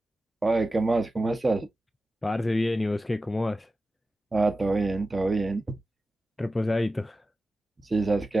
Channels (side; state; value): both; normal; correlation 0.94